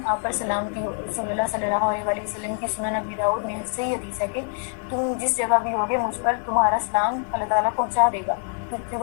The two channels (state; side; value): silent; right; 56 dB below the other